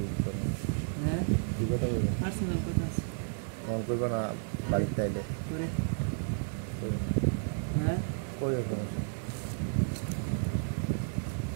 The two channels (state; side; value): silent; left; digital silence